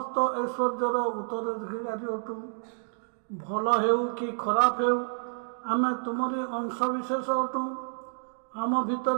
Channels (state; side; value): silent; left; digital silence